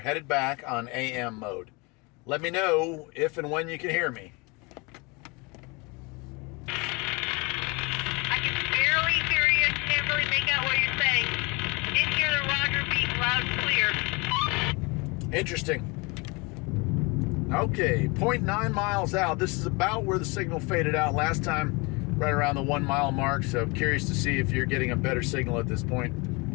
back on AM mode. Let me know if and when you can hear me. Interesting. Okay, 0.9 miles out. This is about where the signal faded out last time, right around the 1 mile mark. So I'm curious to see if you're getting a better signal at this point.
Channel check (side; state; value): right; quieter; 27.8 dB